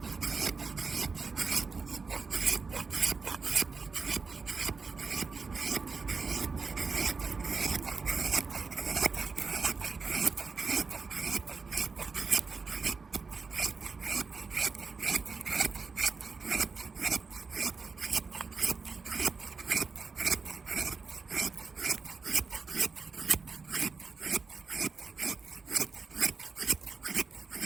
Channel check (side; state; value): left; quieter; 4.7 dB